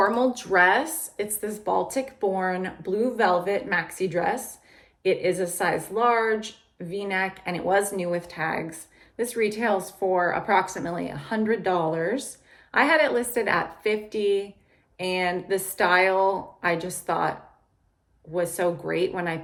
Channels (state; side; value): identical; both; correlation 1.00